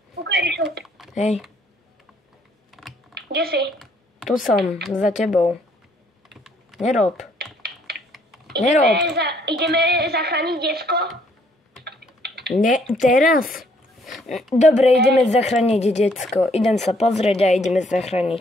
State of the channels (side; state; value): both; normal; correlation 0.65